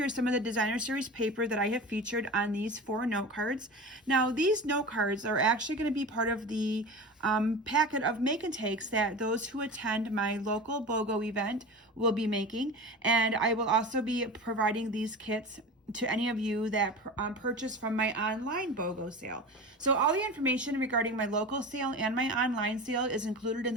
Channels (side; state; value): both; normal; correlation 0.31